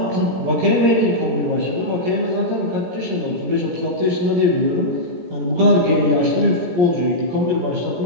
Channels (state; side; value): late; left; 17 ms